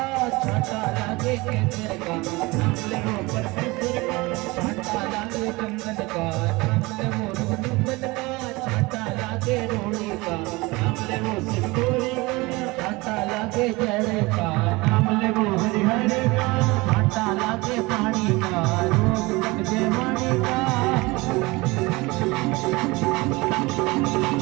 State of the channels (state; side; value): quieter; left; 23.1 dB